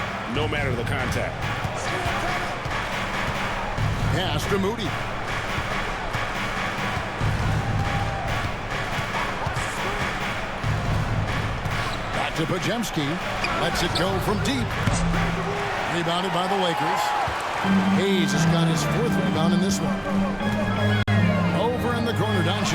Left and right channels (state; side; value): identical; both; correlation 1.00